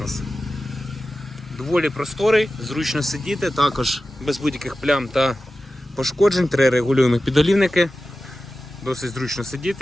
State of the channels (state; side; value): normal; both; correlation 0.94